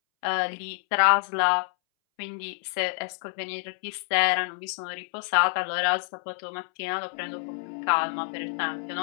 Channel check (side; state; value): right; silent; 60 dB below the other